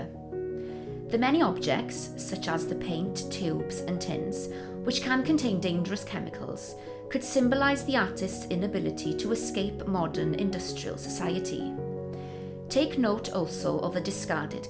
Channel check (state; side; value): identical; both; correlation 1.00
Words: The many objects, such as the paint, tubes and tins, which can contain dangerous chemicals, could symbolise the artist's inability to escape modern industrial society. Take note also of the discarded